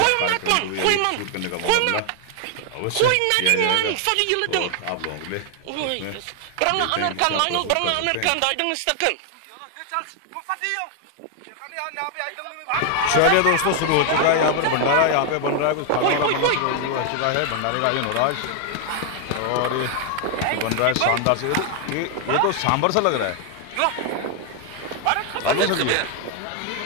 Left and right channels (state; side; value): different; both; correlation 0.00